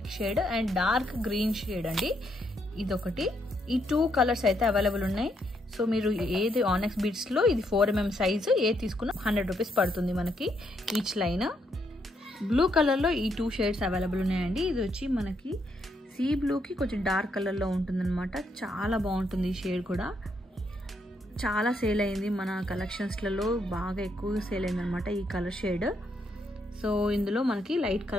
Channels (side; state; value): both; normal; correlation 0.76